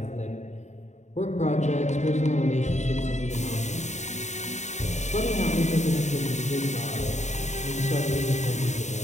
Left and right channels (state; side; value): late; right; 0.34 ms